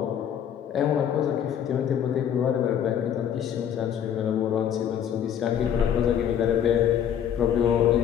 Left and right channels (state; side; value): quieter; right; 9.2 dB